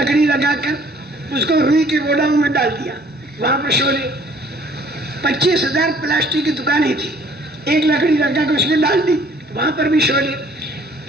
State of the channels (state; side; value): normal; both; correlation 0.58